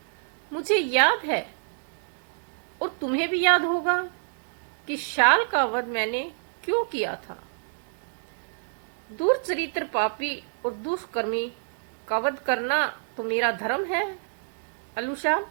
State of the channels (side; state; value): left; silent; digital silence